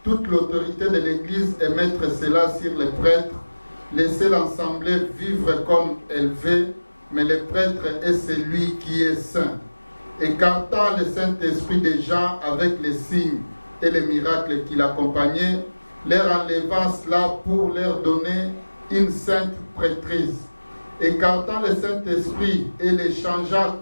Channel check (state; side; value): inverted; both; correlation -1.00